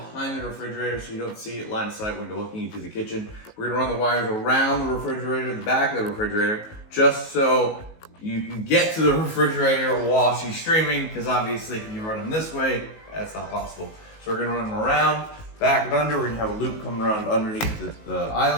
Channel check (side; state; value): right; late; 19 ms